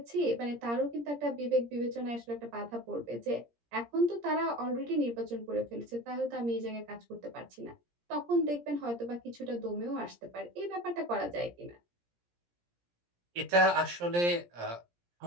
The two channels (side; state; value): left; late; 17 ms